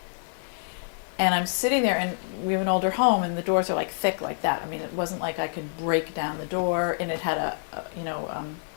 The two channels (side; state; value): right; silent; digital silence